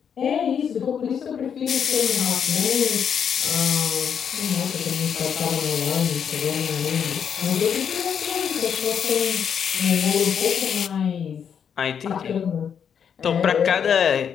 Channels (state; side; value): quieter; right; 7.6 dB